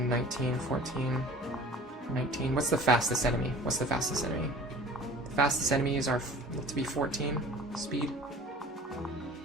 19, 14, 19. What's the fastest enemy? What's the fastest enemy? The fastest enemies are to be 14 speed.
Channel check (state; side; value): normal; both; correlation 0.44